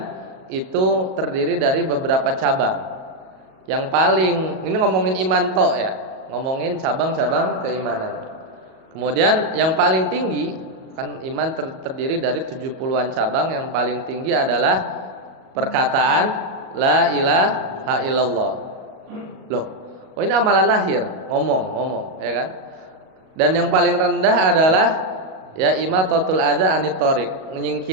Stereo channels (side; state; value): left; late; 38 ms